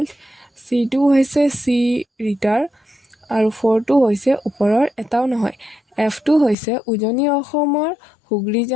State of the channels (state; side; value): drops out; right; at 6.6 s